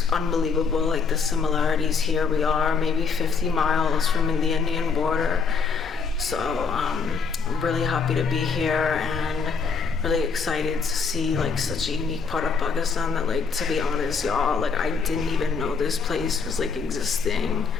unbelievable, like the similarities here. We are maybe 50 miles from the Indian border, so I'm really happy to be here and really excited to see like such a unique part of Pakistan that, like, to be honest, y'all, like I didn't even know this place was like existing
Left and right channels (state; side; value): quieter; right; 5.2 dB